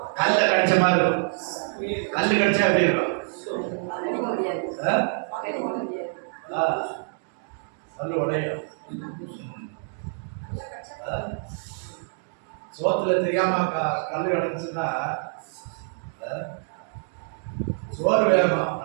கல்ல கடிச்ச மாதிரி இருக்கும். கல்லு கடிச்சா எப்படி இருக்கும்? கல்லு உடையும். சோத்துல தெரியாம கல்லு கிடந்துச்சுன்னா சோறு வேகமா,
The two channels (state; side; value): silent; left; 61 dB below the other